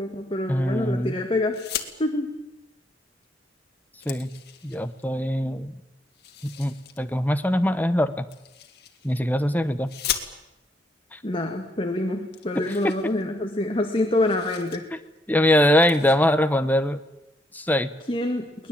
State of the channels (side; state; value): both; normal; correlation 0.74